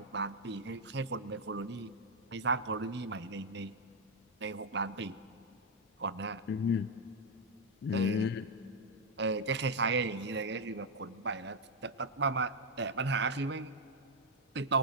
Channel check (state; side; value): normal; both; correlation 0.00